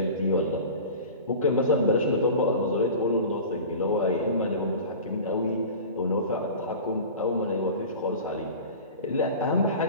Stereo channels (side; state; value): both; inverted; correlation -0.36